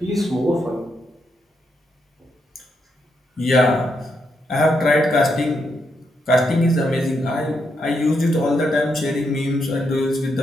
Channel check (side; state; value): both; normal; correlation 0.80